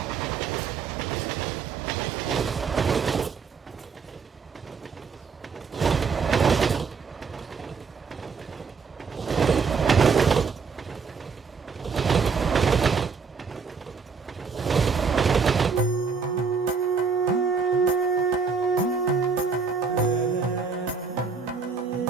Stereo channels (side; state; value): left; quieter; 5.4 dB